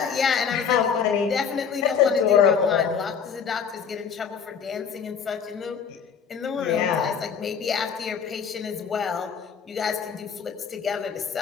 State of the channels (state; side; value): quieter; right; 6.9 dB